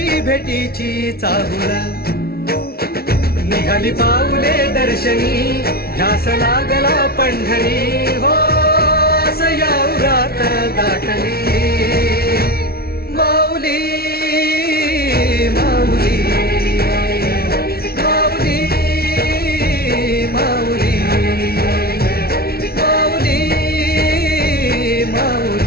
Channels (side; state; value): right; late; 0.45 ms